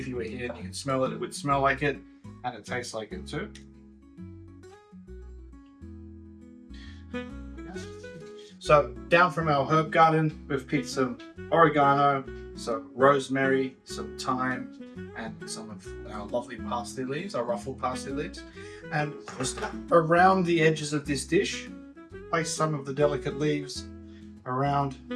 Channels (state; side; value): identical; both; correlation 1.00